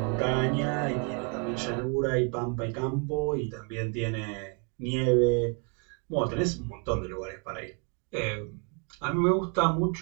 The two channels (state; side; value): quieter; left; 36.1 dB